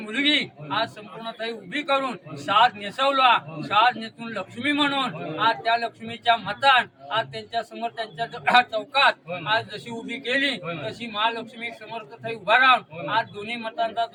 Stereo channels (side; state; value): both; identical; correlation 1.00